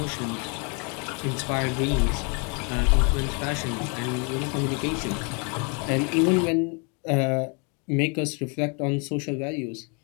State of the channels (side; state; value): right; quieter; 35.2 dB